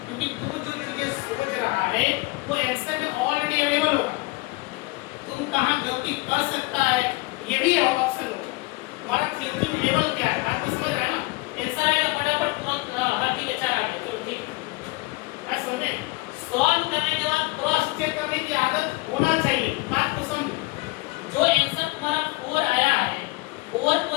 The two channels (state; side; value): quieter; right; 23.1 dB